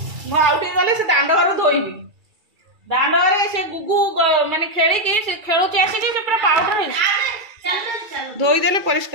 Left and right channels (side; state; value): left; late; 2.3 ms